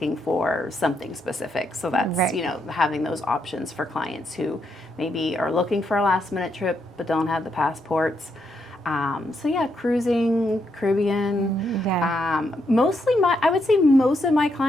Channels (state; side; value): normal; both; correlation 0.79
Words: for something specific. So that's, having those options for clients who maybe are looking for a last minute trip but don't have the passports. Cruising, Caribbean. Mostly I would say most of my